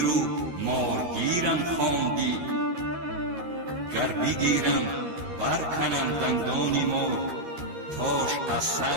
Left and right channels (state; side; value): late; left; 13 ms